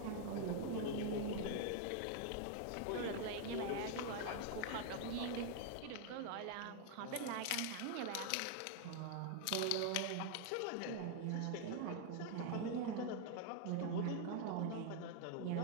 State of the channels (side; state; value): both; different; correlation 0.00